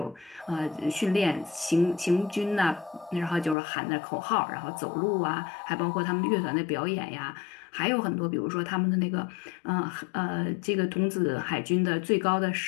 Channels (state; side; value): drops out; right; at 3.6 s